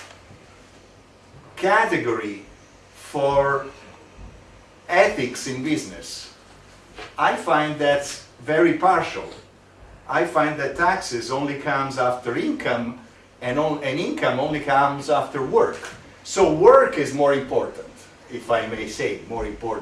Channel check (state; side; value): identical; both; correlation 1.00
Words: category for ethics in business. I find that's very partial. I find that taxes only comes after income, and income only comes after work. So work is more important, if I may say, more